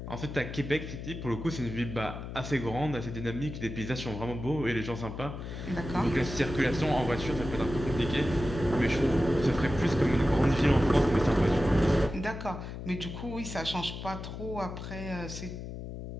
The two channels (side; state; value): left; noise; hum, 8 dB below the sound